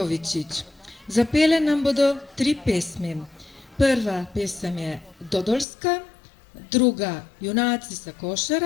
Zapele nam bodo 3 pesmi. Prva pesem je Dodolska, druga Junaci sa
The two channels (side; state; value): right; drops out; at 5.7 s